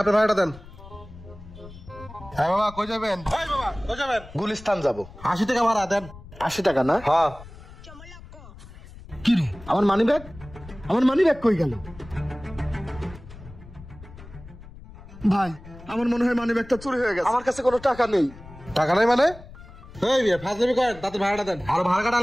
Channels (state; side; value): noise; left; rumble, 17 dB below the sound